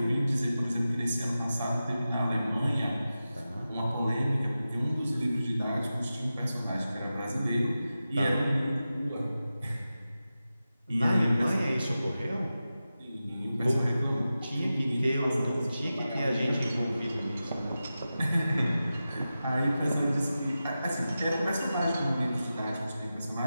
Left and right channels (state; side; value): inverted; both; correlation -0.93